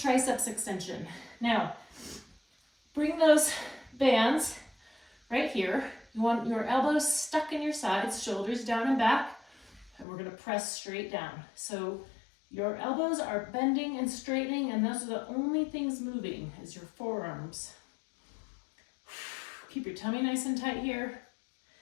extension. Now, bring those bands right here. You want your elbows stuck in your sides, shoulders down and back, and we're gonna press straight down. So your elbows are bending and straightening, and those are the only things moving is your forearms. Keep your tummy nice and tight here.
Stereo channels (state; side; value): drops out; right; at 10.1 s